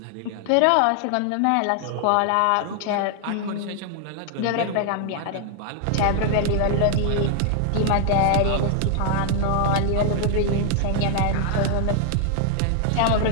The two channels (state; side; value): different; both; correlation 0.00